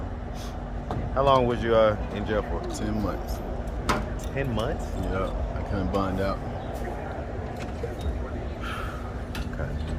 How long was you in jail for? 10 months. 10 months? Yeah, I couldn't bond out. Okay.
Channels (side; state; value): both; identical; correlation 1.00